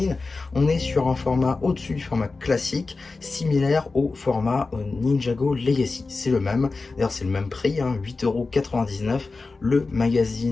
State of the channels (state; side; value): quieter; right; 3.8 dB